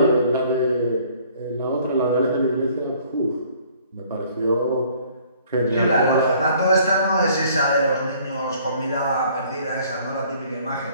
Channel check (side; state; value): both; inverted; correlation -0.58